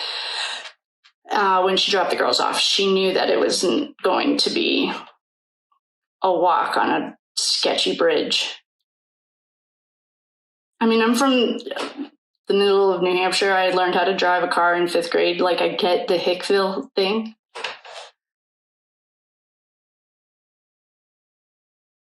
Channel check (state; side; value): identical; both; correlation 1.00